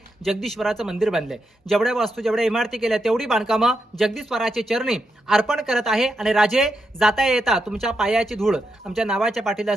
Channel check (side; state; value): both; normal; correlation 0.84